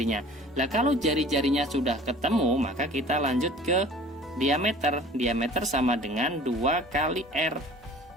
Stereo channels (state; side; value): normal; both; correlation 0.46